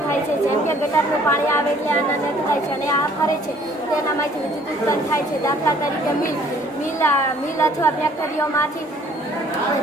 થાય છે. જેમ કે ગટરનું પાણી આવે એટલે આના નેટ થાય છે અને આ ફરે છે તેનામાંથી વિદ્યુત ઉત્પન્ન થાય છે. દાખલા તરીકે મિલ અથવા ફેક્ટરીઓમાંથી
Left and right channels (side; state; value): both; normal; correlation 0.58